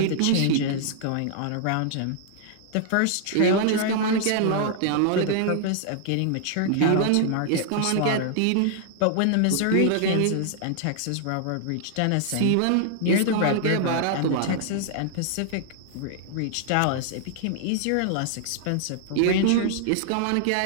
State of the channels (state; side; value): different; both; correlation -0.01